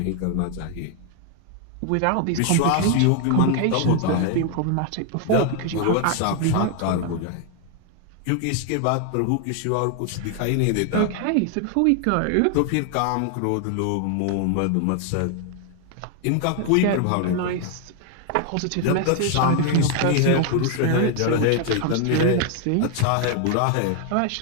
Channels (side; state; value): both; different; correlation 0.01